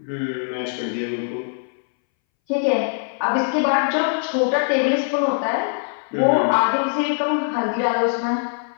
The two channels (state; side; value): silent; right; 63 dB below the other